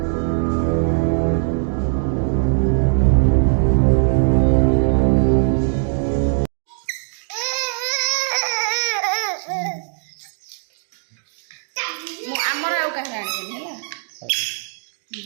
ଆମର ଆଉ କାହାର ଆଣିବେନି ହେଲା।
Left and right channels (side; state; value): left; silent; digital silence